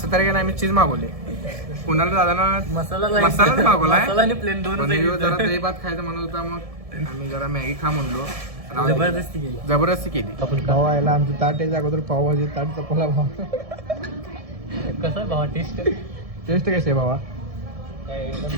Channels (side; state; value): left; late; 1.7 ms